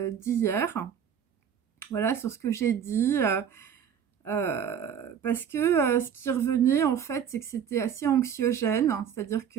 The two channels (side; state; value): left; quieter; 8.2 dB